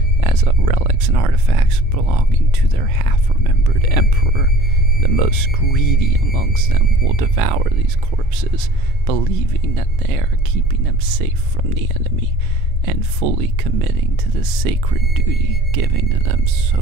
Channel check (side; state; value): both; normal; correlation 0.47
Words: as relics and artifacts belonging to their half-remembered emperor. The most greedy amongst them will devour these corpses, believing that they are keeping them safe from the enemy, and fully committing to the sacred duty given to them